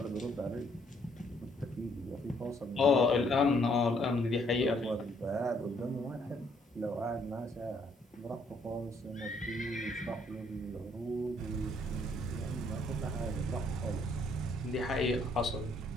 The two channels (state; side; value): normal; both; correlation 0.67